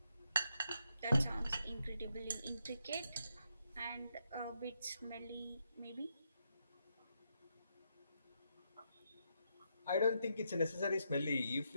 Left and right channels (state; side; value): inverted; both; correlation -0.80